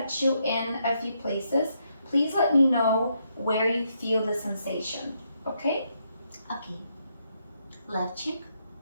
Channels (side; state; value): both; inverted; correlation -0.77